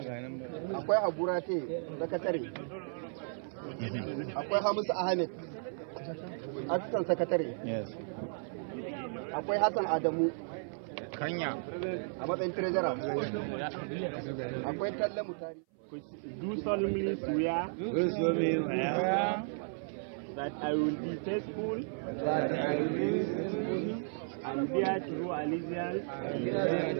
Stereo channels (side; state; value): left; silent; 55 dB below the other